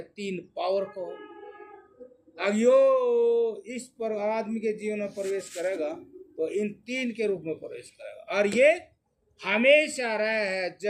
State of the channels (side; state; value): both; identical; correlation 1.00